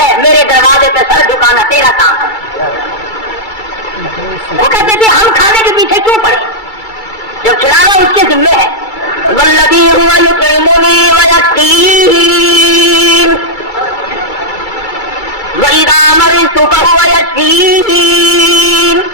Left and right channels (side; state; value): right; late; 2.3 ms